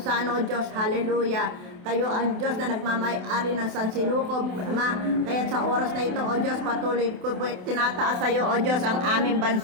saan, O Diyos, hallelujah. Kayo ang Diyos na nagmamay-ari ng sansinukob, Ama. Kaya sa oras na ito, O Diyos, patuloy ko po tinataas sa iyo, O Diyos, ang aming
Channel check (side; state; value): left; late; 28 ms